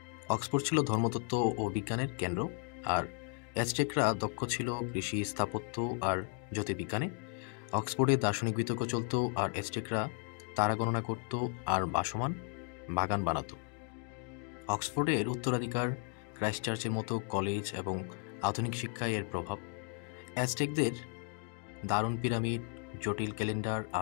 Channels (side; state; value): right; quieter; 37.0 dB